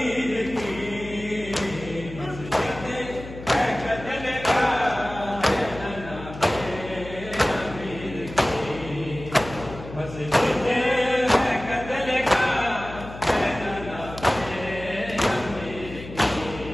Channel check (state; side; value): noise; left; hum, 13 dB below the sound